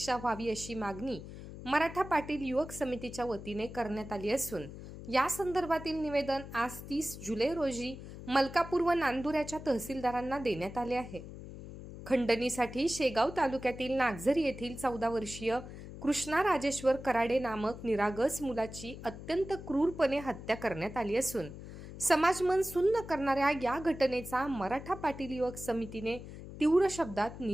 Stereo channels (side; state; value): left; noise; hum, 12 dB below the sound